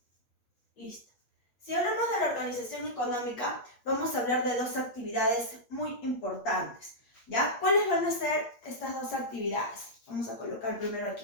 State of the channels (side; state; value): right; late; 8.5 ms